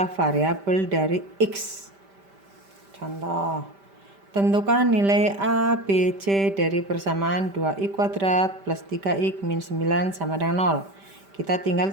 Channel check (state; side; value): late; left; 5.1 ms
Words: variabel dari X. Contoh, tentukan nilai A, B, C dari persamaan 2x kuadrat plus 3x min 9 sama dengan 0. Kita tinggal